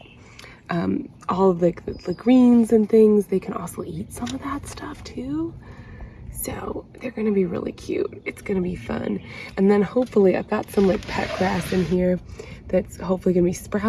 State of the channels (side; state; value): both; identical; correlation 1.00